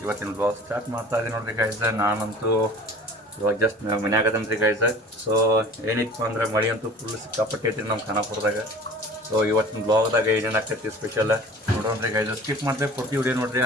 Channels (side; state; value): both; normal; correlation 0.44